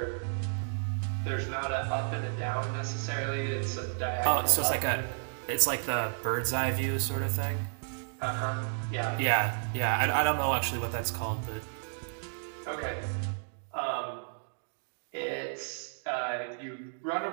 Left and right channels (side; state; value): left; silent; digital silence